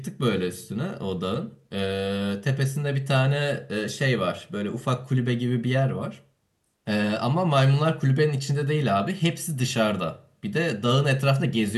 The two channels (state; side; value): identical; both; correlation 1.00